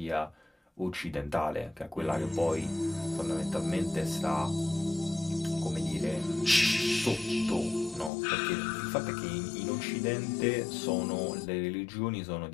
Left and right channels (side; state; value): right; drops out; at 8.1 s